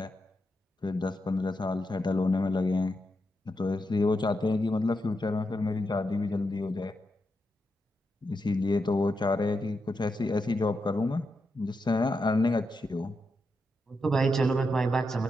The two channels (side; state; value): both; normal; correlation 0.85